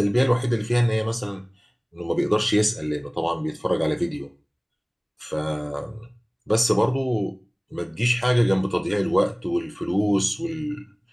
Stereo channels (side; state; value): both; identical; correlation 1.00